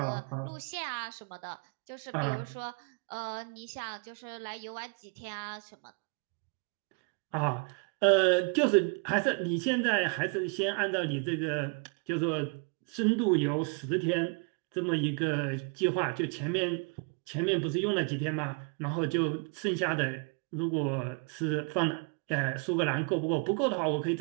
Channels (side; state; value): left; quieter; 37.1 dB